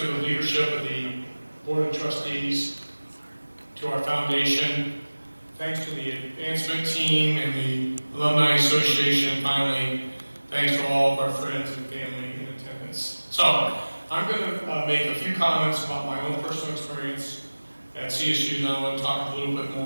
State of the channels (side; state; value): both; inverted; correlation -1.00